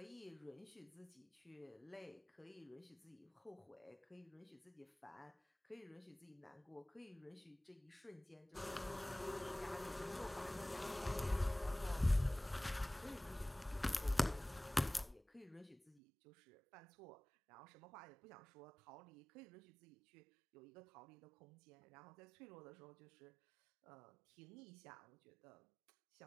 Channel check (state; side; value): drops out; left; at 16.0 s